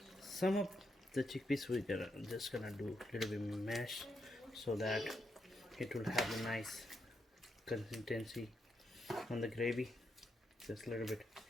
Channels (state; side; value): normal; both; correlation 0.81